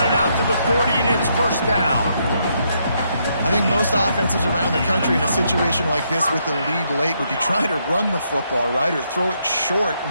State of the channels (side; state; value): both; inverted; correlation -0.76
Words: it out to the 40, and it's first down. I think most offenses around the country in a situation like this with the lead late would be trying to run the football, right, or throw it short